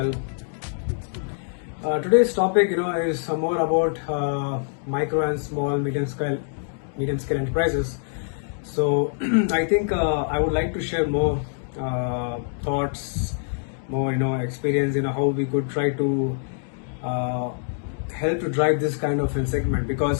Today's topic, is more about micro and small, medium scale enterprises. So I think I would like to share more thoughts, more experience, how we could try to help to drive this kind of a segment,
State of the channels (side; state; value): right; silent; digital silence